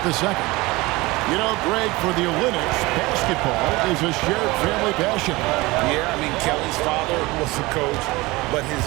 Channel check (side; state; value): left; quieter; 21.8 dB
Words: the second. You know, Greg, for the Olympics, basketball is a shared family passion. Yeah, I mean, Kelly's father was a coach, but his